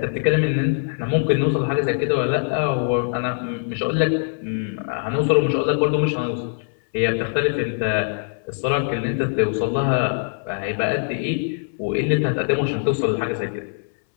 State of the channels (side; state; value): right; silent; 64 dB below the other